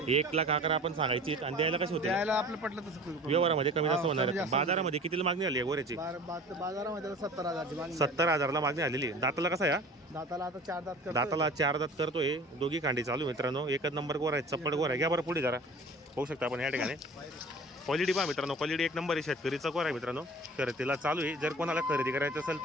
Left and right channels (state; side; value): normal; both; correlation 0.43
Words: 1,11,000 आपण सांगायची आणि द्यायला कशी होते? द्यायला आपलं पटलं तसं करू. व्यवहारामध्ये कमी जास्त हा, होणार कमी आहे. जास्त बाजारामध्ये कितीला मागणी आली आहे गोऱ्याची? बाजारामध्ये 70,000ची मागणी. 70,000ला मागणी आलेली आहे. दाताला कसा आहे? दाताला आता 4 दात करतोय. दाताला 4 दात करतोय. दोघी खांडी चालू मित्रांनो. एकच नंबर गोरा आहे, चप्पड गोरा आहे. घ्या बरं पुढे जरा पाहू शकता आपण या ठिकाणी. क्वालिटी पहा मित्रांनो, क्वालिटी एक नंबर आहे. शेतकरीचा गोरा आहे मित्रांनो. शर्यतीला चालू आहे. जर कोणाला खरेदी करायचं असेल